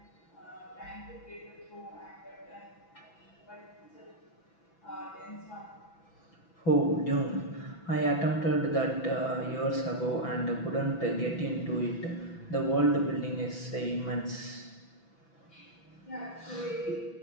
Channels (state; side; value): late; right; 6.0 ms